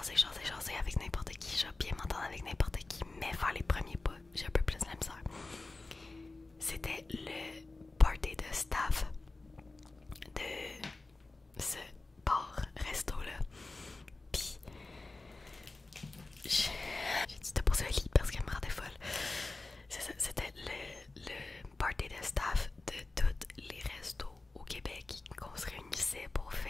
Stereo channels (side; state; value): right; quieter; 3.3 dB